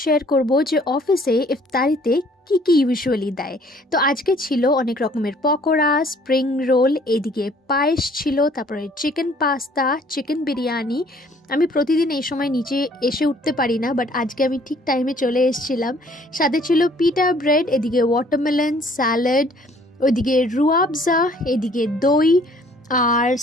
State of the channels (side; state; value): both; normal; correlation 0.58